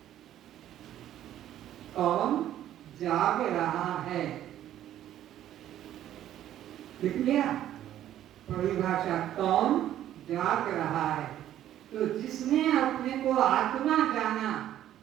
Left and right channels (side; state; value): left; quieter; 12.0 dB